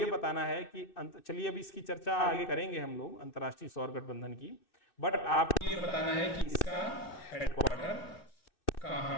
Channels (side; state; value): right; late; 2.6 ms